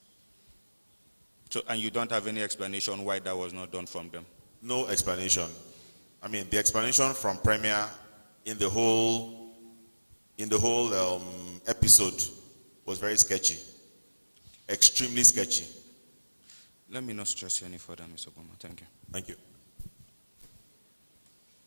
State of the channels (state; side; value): inverted; both; correlation -1.00